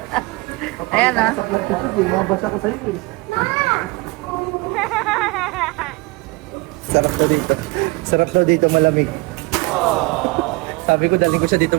Ayan ah. Sa vlog ko, di mababasa ko sa'yo eh. Sarap daw dito. Sarap daw dito, malamig. Sabi ko, daling ko siya dito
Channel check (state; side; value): quieter; left; 24.1 dB